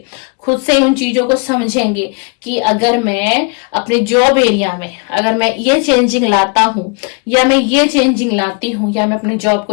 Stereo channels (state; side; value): quieter; right; 33.7 dB